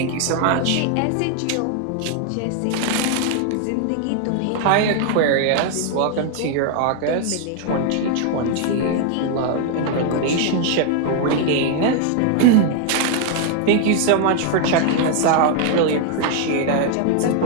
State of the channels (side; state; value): both; different; correlation 0.00